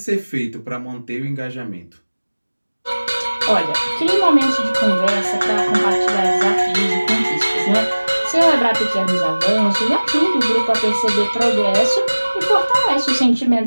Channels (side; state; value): both; inverted; correlation -1.00